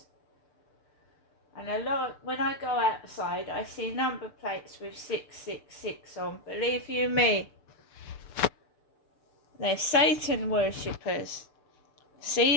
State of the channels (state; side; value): late; right; 6.8 ms